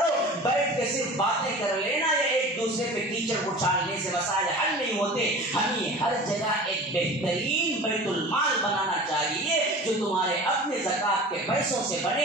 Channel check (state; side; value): normal; both; correlation 0.38